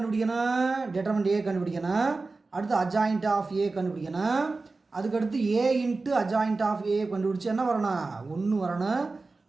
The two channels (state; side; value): quieter; left; 3.7 dB